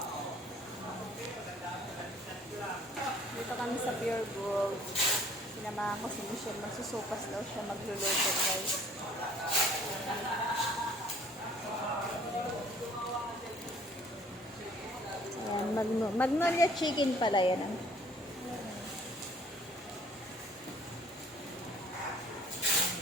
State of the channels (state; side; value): normal; both; correlation 0.55